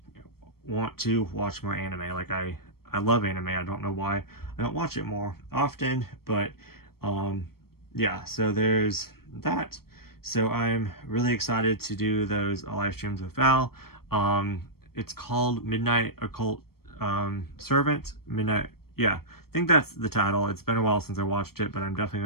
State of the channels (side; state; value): right; late; 0.94 ms